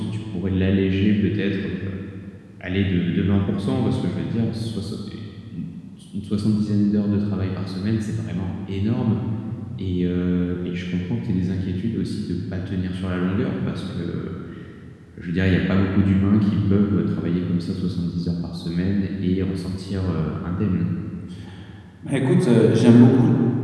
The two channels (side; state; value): both; identical; correlation 1.00